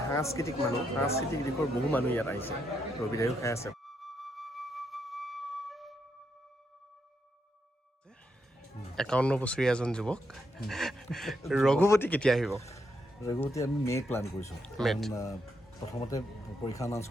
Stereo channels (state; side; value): normal; both; correlation 0.80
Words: সাংস্কৃতিক দিশৰ বহু মানুহ ইয়াত আহিছে, ৰবিদায়ো খাই আছে। 51 বছৰীয়া এজন যুৱক। ৰঘুপতি কেতিয়া আহিব? ৰঘুপতি আমি মে' প্লান কৰিছোঁ। প্ৰথমতে পৰীক্ষা এনাউন্স